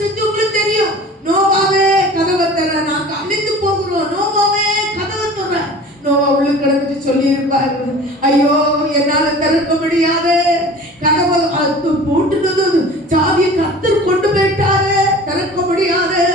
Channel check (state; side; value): normal; both; correlation 0.41